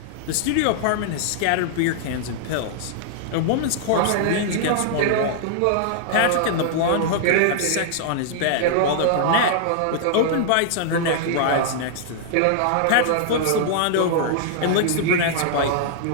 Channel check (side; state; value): both; different; correlation -0.01